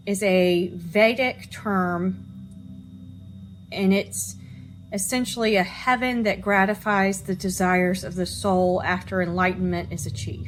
is a Vedic term, and it's essentially a heaven that gratifies the desires of the soul after enlightenment is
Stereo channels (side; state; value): both; identical; correlation 1.00